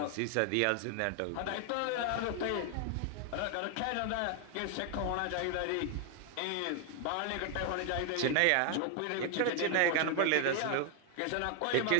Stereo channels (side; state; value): both; different; correlation 0.00